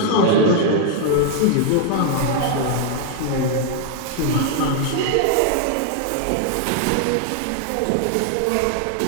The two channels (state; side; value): different; both; correlation 0.00